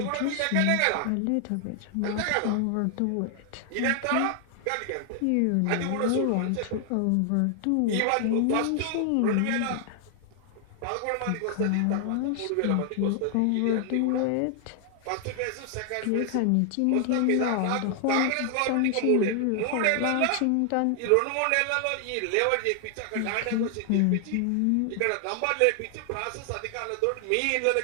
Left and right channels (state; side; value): different; both; correlation 0.00